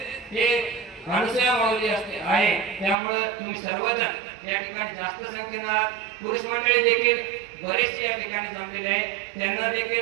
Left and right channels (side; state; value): left; drops out; at 3.0 s